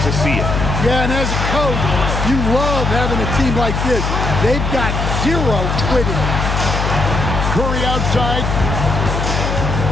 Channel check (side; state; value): left; noise; hum, 1 dB below the sound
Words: see it. Yeah, and as a coach, you love having a team like this. They've got zero quitting. Curry outside.